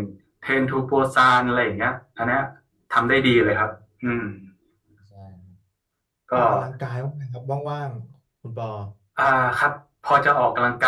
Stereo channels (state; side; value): identical; both; correlation 1.00